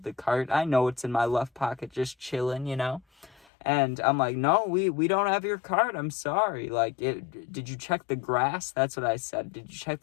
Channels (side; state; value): right; drops out; at 3.5 s